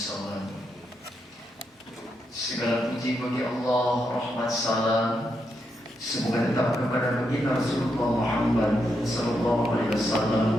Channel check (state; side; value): normal; both; correlation 0.82